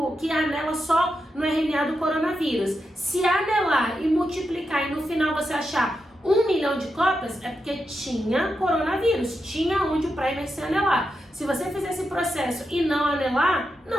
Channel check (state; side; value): normal; both; correlation 0.87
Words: que anela só no RNA do coronavírus. Se anelar e multiplicar e no final você achar 1 milhão de cópias, é porque tinha coronavírus, tinha onde o primer se anelar. Se você fizer esse processo e não anelar,